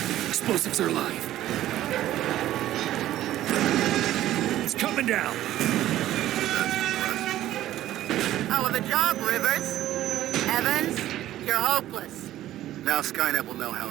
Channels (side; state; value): left; quieter; 13.7 dB